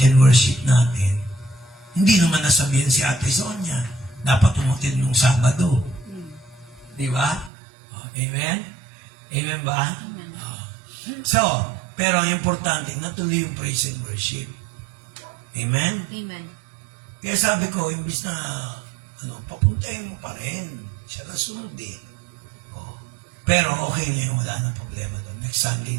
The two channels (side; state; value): left; drops out; at 7.5 s